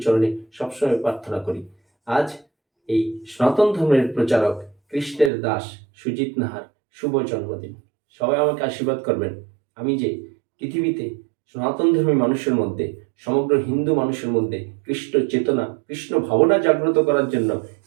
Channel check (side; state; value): left; drops out; at 5.3 s